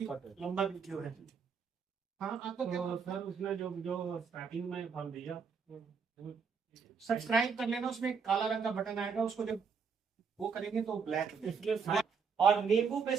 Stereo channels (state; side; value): quieter; left; 5.9 dB